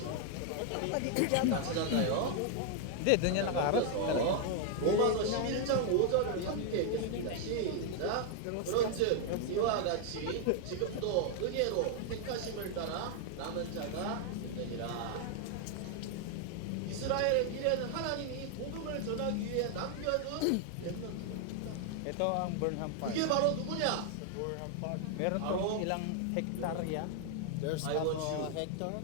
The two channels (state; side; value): different; both; correlation 0.00